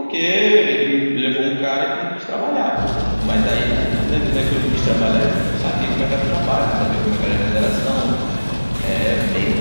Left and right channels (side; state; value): both; inverted; correlation -1.00